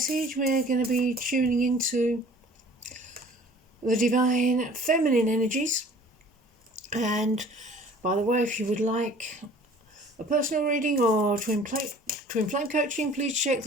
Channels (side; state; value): both; normal; correlation 0.49